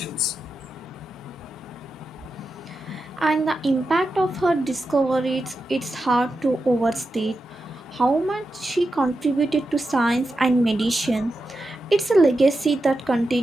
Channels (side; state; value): both; normal; correlation 0.89